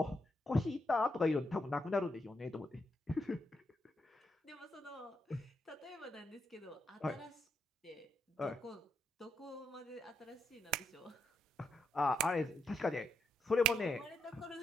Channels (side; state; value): both; normal; correlation 0.80